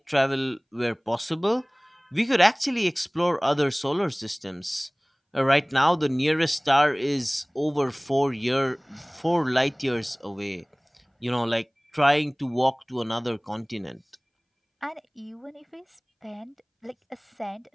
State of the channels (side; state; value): both; identical; correlation 1.00